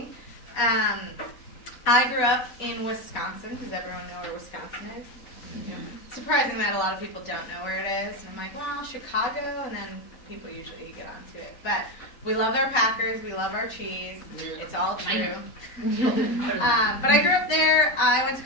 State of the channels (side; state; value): right; late; 4.0 ms